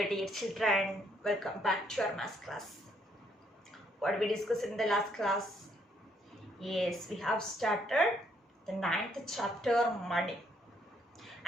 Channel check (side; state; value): both; normal; correlation 0.70